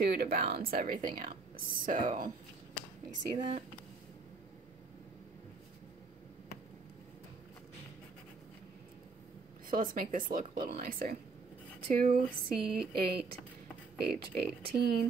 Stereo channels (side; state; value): left; quieter; 4.3 dB